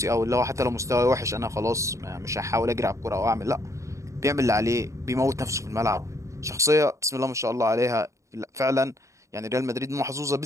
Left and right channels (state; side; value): late; left; 0.15 ms